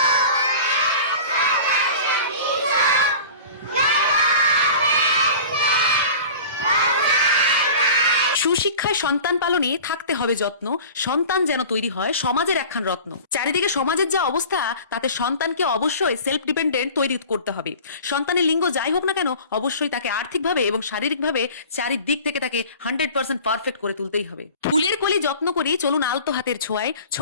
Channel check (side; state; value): both; inverted; correlation -0.39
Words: সুশিক্ষায় সন্তান পালনে থাকতে হবে যত্ন, সন্তান যেন তৈরি হয় সমাজের একখান রত্ন। চারিদিকে সমাজের যা অবস্থা, তাতে সন্তানকে অবশ্যই সেলফ ডিপেন্ডেন্ট তৈরি করতে হবে। সন্তানের লিঙ্গ যাই হোক না কেন, অবশ্যই তাকে আর্থিকভাবে এবং শারীরিকভাবে চারিদিক থেকে তাকে 100% পারফেক্ট করে তুলতেই হবে। ফুলের কলি যত্ন করি, চলুন আলতো হাতের ছোঁয়ায়।